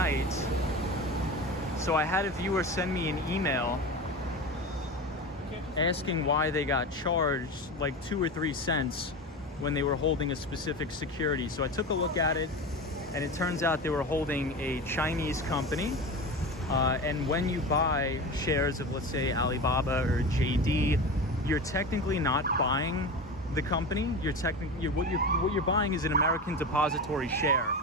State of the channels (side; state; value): both; normal; correlation 0.27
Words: So I had a viewer send me an email asking why they got charged like 2 or 3 cents when they were holding a specific security. So I took a look at it, and it turns out they were holding a Chinese company. And when you buy shares of, let's say, Alibaba or JD, you're technically not buying the company. What you're buying is an American depository share